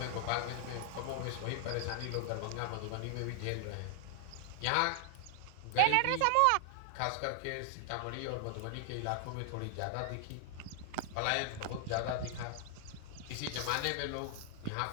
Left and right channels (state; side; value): different; both; correlation 0.00